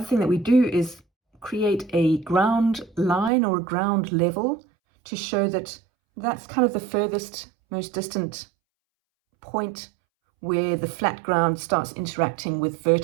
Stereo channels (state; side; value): drops out; left; at 3.3 s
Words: thing that we do is create a ground line or a ground level to show that that's kind of the furthest, most distant point where the flat ground starts interacting with